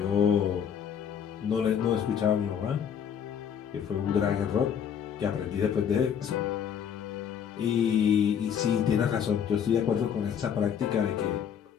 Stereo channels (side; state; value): right; quieter; 8.2 dB